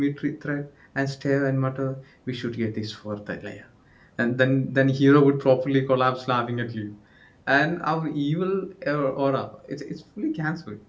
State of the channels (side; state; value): both; identical; correlation 1.00